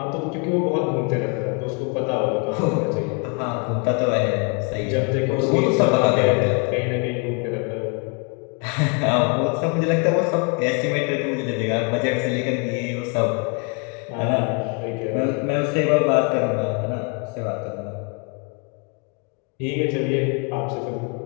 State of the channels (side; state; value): right; quieter; 34.7 dB